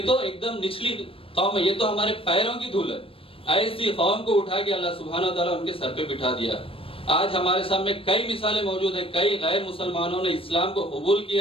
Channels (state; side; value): late; right; 0.27 ms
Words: تو ایک دم نچلی قوم ہے, یہ تو ہمارے پیروں کی دھول ہے. ایسی قوم کو اٹھا کے اللہ سبحانہ وتعالیٰ ان کے سر پہ بٹھا دیا. آج ہمارے سامنے کئی مثالیں موجود ہیں, کئی غیر مسلمانوں نے اسلام کو قبول